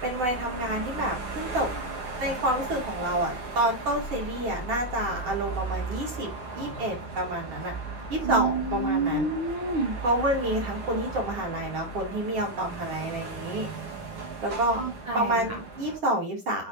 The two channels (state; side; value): late; left; 7.7 ms